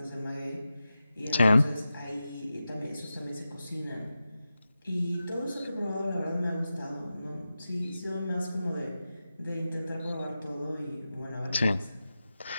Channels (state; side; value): inverted; both; correlation -0.93